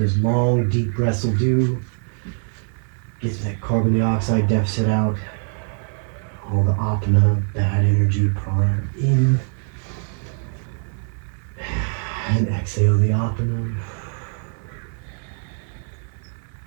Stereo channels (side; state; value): left; silent; 55 dB below the other